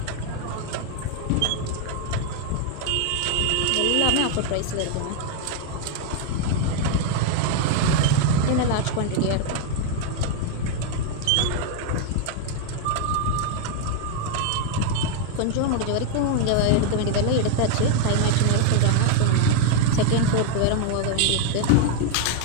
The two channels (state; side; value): different; both; correlation 0.00